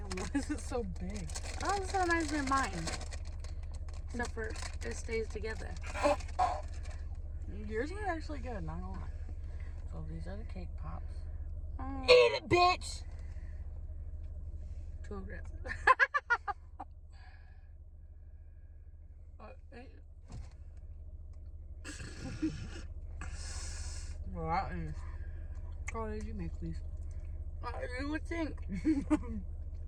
why is it so big? Oh, it's so nice than mine. Except for it stays together. Yours are actually good, not gonna lie. So these are the cake pops. Oh, Eat it, bitch! too aggressive. Well, that is. What did you make, please? You would think.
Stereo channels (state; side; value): identical; both; correlation 1.00